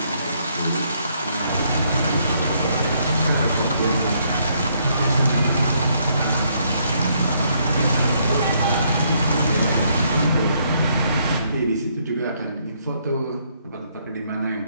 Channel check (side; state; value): both; inverted; correlation -0.71